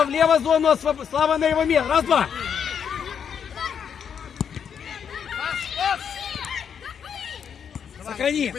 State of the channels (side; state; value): right; quieter; 7.6 dB